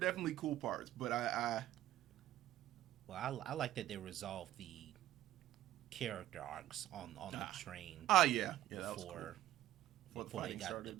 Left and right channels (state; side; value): quieter; left; 13.7 dB